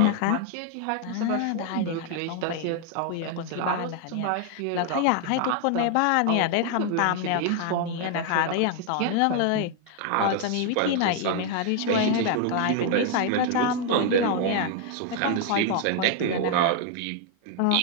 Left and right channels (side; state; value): both; different; correlation 0.00